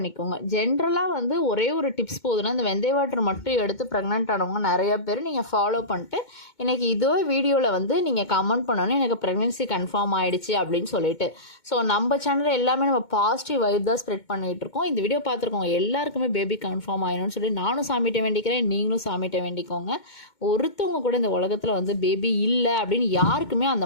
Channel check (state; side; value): late; right; 2.2 ms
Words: ஜென்ரலாக வந்து ஒரே ஒரு டிப்ஸ் போதுன்னா இந்த வெந்தய வாட்டர் மட்டும் எடுத்து ப்ரெக்னென்ட் ஆனவங்க நிறைய பேர் நீங்கள் ஃபாலோ பண்ணிட்டு இன்றைக்கி இதே வீடியோவில் வந்து நீங்கள் கமெண்ட் பண்ணணும் எனக்கு ப்ரெக்னென்சி கன்ஃபார்ம் ஆகிடுச்சு அப்படின்னு சொல்லிட்டு. ஸோ நம்ம சேனலில் எல்லாமே நம்ம பாசிட்டிவ் வைப் தான் ஸ்ப்ரெட் பண்ணிகிட்ருக்கோம். இந்த வீடியோ பார்த்துருக்கோங்க எல்லாருக்குமே பேபி கன்ஃபார்ம் ஆகிடும்னு சொல்லி நானும் சாமிகிட்ட வேண்டிக்கிறேன், நீங்களும் சாமிகிட்ட வேண்டிக்கோங்க. ஒருத்தவங்க கூட இந்த உலகத்தில் வந்து பேபி இல்லை அப்படின்னு யாருக்குமே